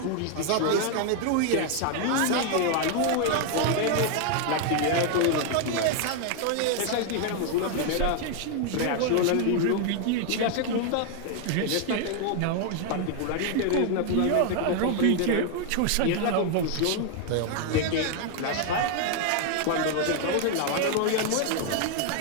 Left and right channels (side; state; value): both; different; correlation 0.00